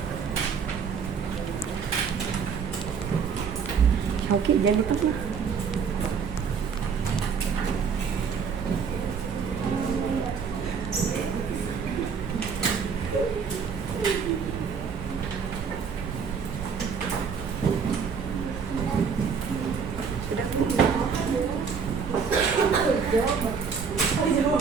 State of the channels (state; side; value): quieter; left; 6.2 dB